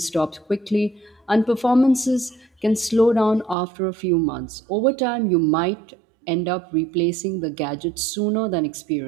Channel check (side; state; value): left; drops out; at 3.6 s